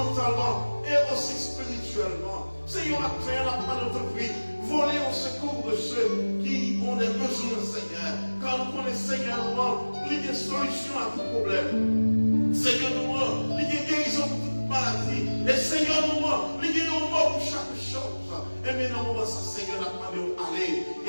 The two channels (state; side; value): inverted; both; correlation -1.00